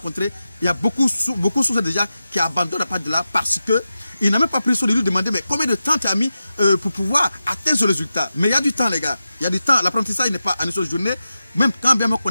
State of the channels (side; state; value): both; inverted; correlation -0.92